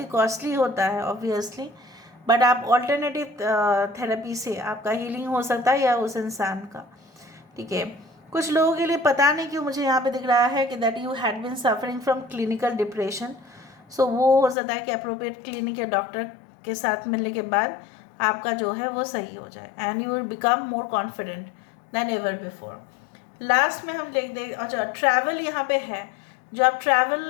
कॉस्टली होता है ऑब्वियसली, बट आप ऑल्टरनेटिव थेरेपी से आपका हीलिंग हो सकता है या उस इंसान का। ठीक है, कुछ लोगों के लिए पता नहीं क्यों मुझे यहाँ पे दिख रहा है कि that you had been suffering from clinical depression. So वो हो सकता है कि अप्रोप्रिएट क्लिनिक या डॉक्टर के साथ मिलने के बाद आपका जो है वो सही हो जाए and you will become more confident then ever before. Last में हम देख अच्छा ट्रैवल यहाँ पे है, जो आप ट्रैवल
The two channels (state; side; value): drops out; right; at 14.6 s